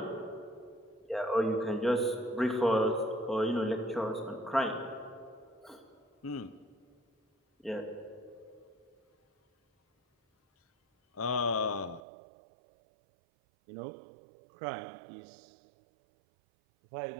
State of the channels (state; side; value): drops out; left; at 12.0 s